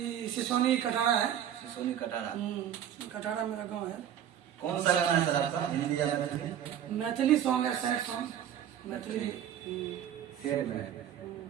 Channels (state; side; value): quieter; left; 10.0 dB